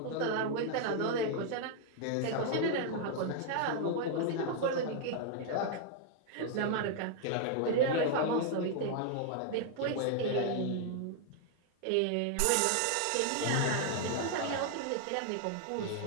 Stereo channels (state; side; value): different; both; correlation 0.00